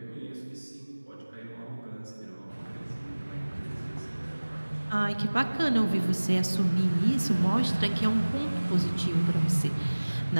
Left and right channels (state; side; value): inverted; both; correlation -1.00